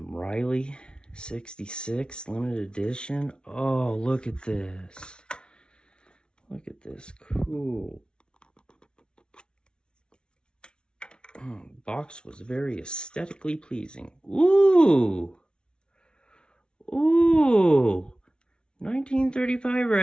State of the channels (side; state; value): right; late; 0.056 ms